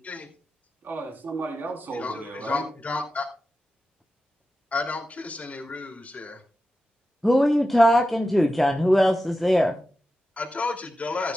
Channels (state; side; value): normal; both; correlation 0.92